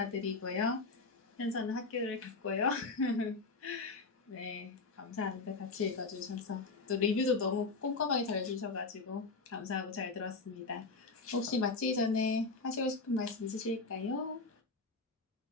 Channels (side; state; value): right; quieter; 3.9 dB